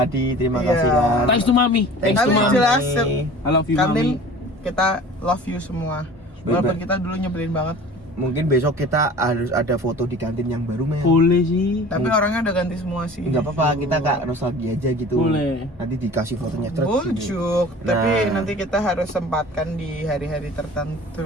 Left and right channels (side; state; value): both; normal; correlation 0.43